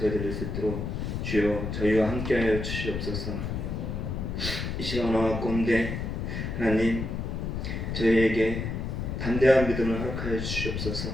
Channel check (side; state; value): left; noise; rumble, 3 dB below the sound